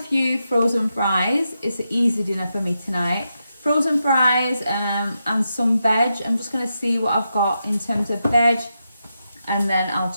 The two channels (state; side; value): inverted; both; correlation -0.86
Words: few frozen fries. It's an easy dinner for me tonight. Frozen fries and some veg. I'm just going to see what I've got in terms of veg, and then I'll